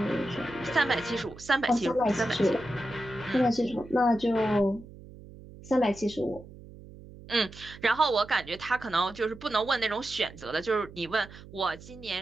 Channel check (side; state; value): right; noise; hum, 18 dB below the sound